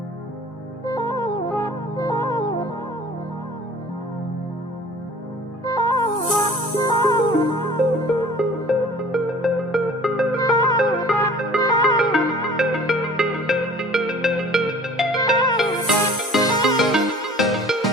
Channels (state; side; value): normal; both; correlation 0.48